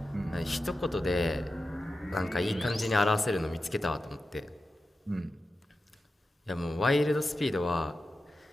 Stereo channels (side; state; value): both; normal; correlation 0.91